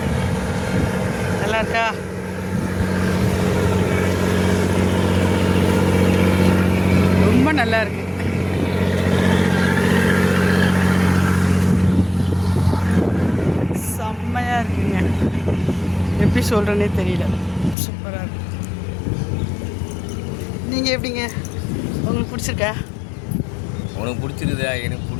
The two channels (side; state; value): right; drops out; at 17.8 s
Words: நல்லா இருக்கா? ரொம்ப நல்லா இருக்கு. செம்மையாக இருக்குங்க, எப்படி சொல்கிறேன்னே தெரியல, சூப்பராக இருக்கு. நீங்கள் எப்படிங்க, உங்களுக்கு பிடிச்சிருக்கா? உனக்கு பிடிச்சிருதா? எனக்கு